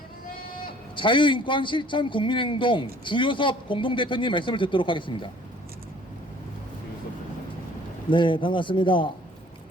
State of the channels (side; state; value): both; normal; correlation 0.55